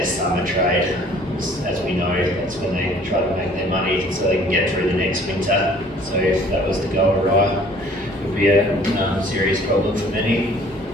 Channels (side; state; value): both; normal; correlation 0.54